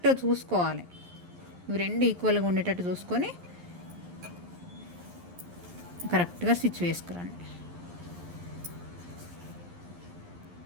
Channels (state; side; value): late; left; 11 ms